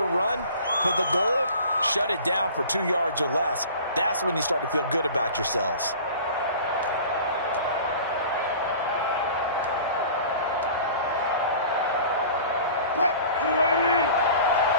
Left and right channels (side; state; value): both; inverted; correlation -0.43